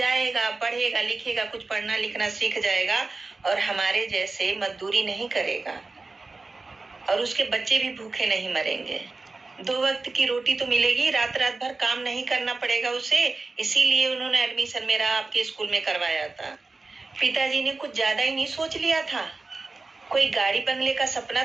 पढ़ेगा, लिखेगा, कुछ पढ़ना लिखना सीख जाएगा और हमारे जैसे मजदूरी नहीं करेगा और उसके बच्चे भी भूखे नहीं मरेंगे। 2 वक्त की रोटी तो मिलेगी, रात रात भर काम नहीं करना पड़ेगा उसे। इसीलिए उन्होंने एडमिशन मेरा आपके स्कूल में करवाया था। पिताजी ने कुछ ज्यादा ही नहीं सोच लिया था। कोई गाड़ी बंगले का सपना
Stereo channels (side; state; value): left; quieter; 3.6 dB